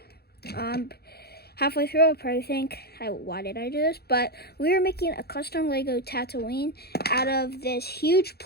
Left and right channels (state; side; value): late; right; 0.46 ms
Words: halfway through, I'll probably think, why did I do this? But we are making a custom Lego Tatooine out of this huge